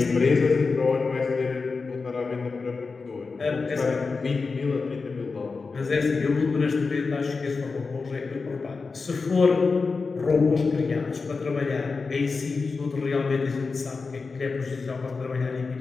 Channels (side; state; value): right; quieter; 4.4 dB